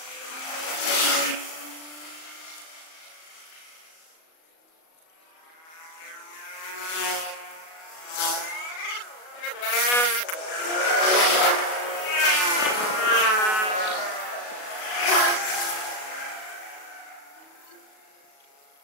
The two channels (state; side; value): late; right; 37 ms